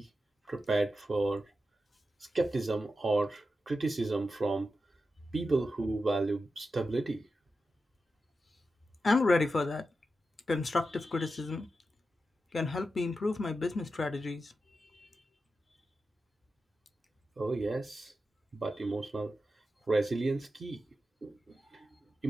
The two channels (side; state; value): both; normal; correlation 0.90